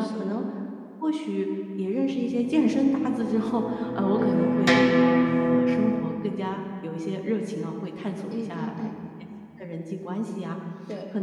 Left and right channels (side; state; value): both; identical; correlation 1.00